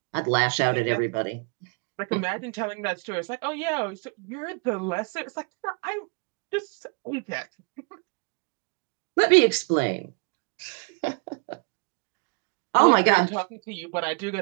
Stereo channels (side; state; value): left; quieter; 37.5 dB